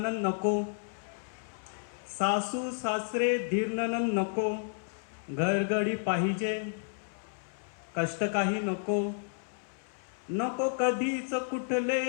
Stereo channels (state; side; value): silent; right; 57 dB below the other